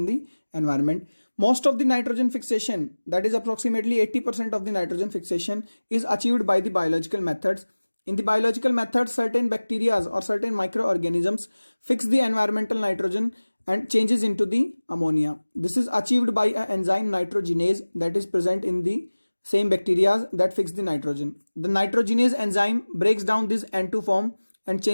the environment. Most of the nitrogen fixation, that is approximately 80% of the nitrogen fixation, is achieved by the biological methods. In the biological methods, certain bacteria or certain microorganisms fix the environmental nitrogen and changes into the ammonia. This is achieved by an enzyme nitrogenase that is present in the same bacteria that fix the nitrogen. The nitrogenase enzyme breaks down this N2 form and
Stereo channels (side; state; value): both; inverted; correlation -1.00